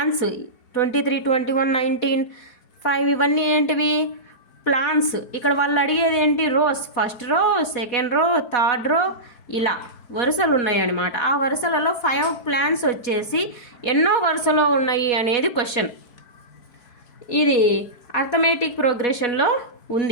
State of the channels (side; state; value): right; late; 4.6 ms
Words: 23 21 19 5 ఇవన్నీ ఏంటివి ప్లాంట్స్. ఇక్కడ వాళ్ళు అడిగేది ఏంటి rows, first row second row third row ఇలా వరుసలు ఉన్నాయి అన్నమాట. ఆ వరుసలలో 5 ప్లాంట్స్ వచ్చేసి ఎన్నో వరుసలో ఉన్నాయి అనేది క్వశ్చన్. ఇది అర్థమెటిక్ ప్రోగ్రెషన్లో